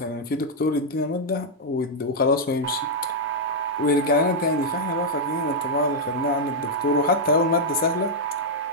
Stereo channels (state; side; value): normal; both; correlation -0.05